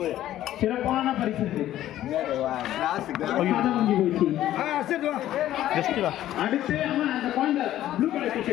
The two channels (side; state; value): right; quieter; 13.1 dB